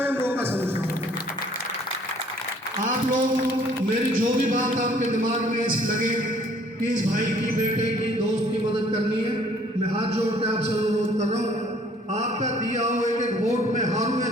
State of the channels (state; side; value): normal; both; correlation 0.58